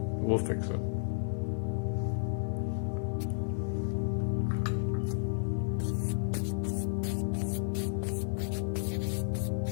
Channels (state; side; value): silent; right; 56 dB below the other